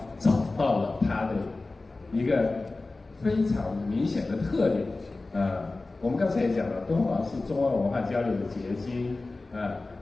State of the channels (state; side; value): quieter; right; 3.3 dB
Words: 找到了它的一个非常明显的特点我们刚才也讲了，敦煌是中外文化交流的结晶